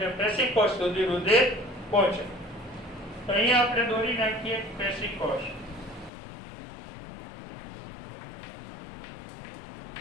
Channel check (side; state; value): right; drops out; at 6.1 s